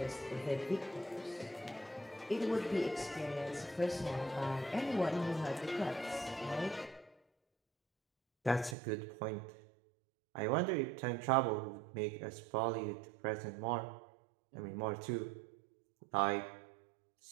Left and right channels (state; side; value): drops out; left; at 8.8 s